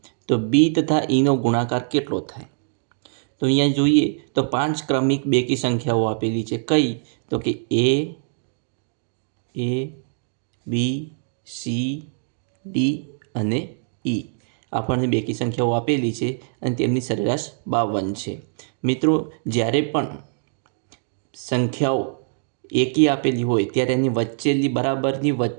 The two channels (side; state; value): left; silent; digital silence